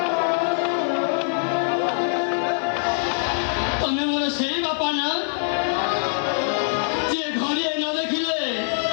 ତମେ ମୋର ସେଇ ବାପା ନା ଯିଏ ଘରିଏ ନ ଦେଖିଲେ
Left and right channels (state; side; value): silent; right; 63 dB below the other